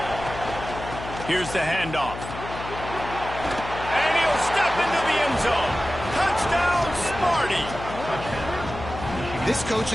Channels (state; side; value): noise; left; hum, 10 dB below the sound